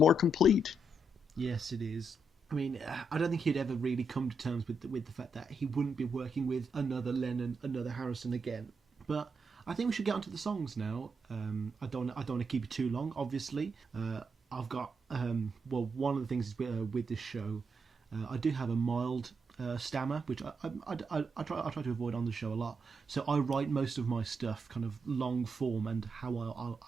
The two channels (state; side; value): normal; both; correlation 0.81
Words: complete. Yes, it is. I mean, I don't think he'd ever really come to terms with the fact that he wouldn't be working with another Lennon, another Harrison again. But I think we should get onto the songs now. I don't want to keep it too long, obviously. I've got, one of the things is with this show, I do have a mild stammer, which I try to avoid on the show a lot. So I write most of my stuff kind of long form and how